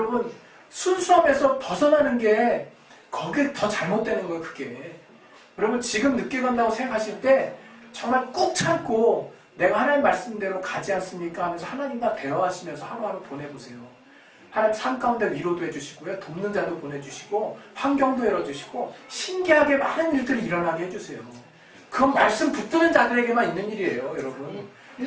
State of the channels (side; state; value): both; identical; correlation 1.00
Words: 순수함에서 벗어나는 게 거기에 더 잘못되는 거예요. 그게. 여러분 지금 늦게 간다고 생각하실 때 정말 꾹 참고 내가 하나님 말씀대로 가지 않습니까? 하면서 하나님과 대화하시면서 하루하루 보내보세요. 하나님 삶 가운데 위로도 해주시고요. 돕는 자도 보내주시고 환경도 열어주시고 신기하게 많은 일들이 일어나게 해주세요. 그건 말씀 붙드는 자들에게만 있는 일이에요. 여러분